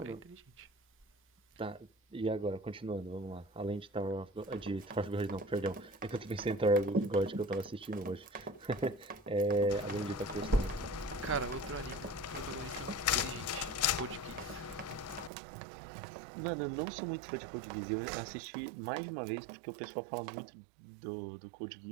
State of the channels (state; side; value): drops out; left; at 15.3 s